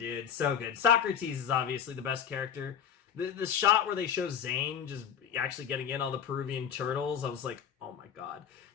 So good. Socrates is obviously the best character. the shot where they show Zane just actually getting in all the Peruvian turtles, I was like, oh my god,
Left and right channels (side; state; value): right; quieter; 8.4 dB